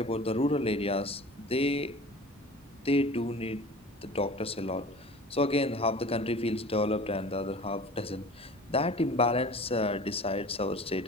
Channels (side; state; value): both; normal; correlation 0.41